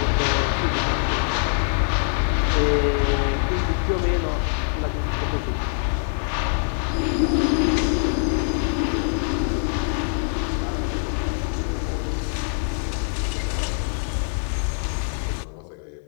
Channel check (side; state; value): right; silent; 61 dB below the other